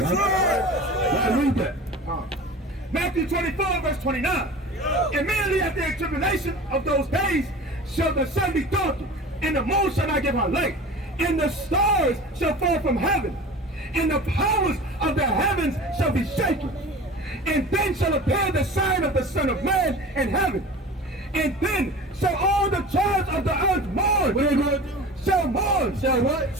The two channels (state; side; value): normal; both; correlation 0.37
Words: Now read that. Matthew 24 verse 29. Immediately after the tribulation of those days shall the sun be darkened, and the moon shall not give her light, and the stars shall fall from heaven, and the powers of the heavens shall be shaken. And then shall appear the sign of the Son of Man in heaven. And then shall all the tribes of the earth mourn. What are they going to do? Shall mourn. Shall what?